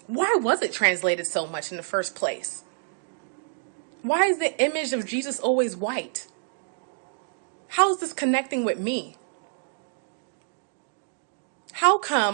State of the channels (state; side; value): silent; left; digital silence